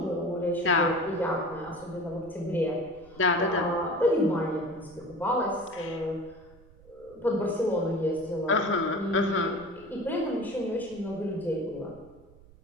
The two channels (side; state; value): right; noise; rumble, 23 dB below the sound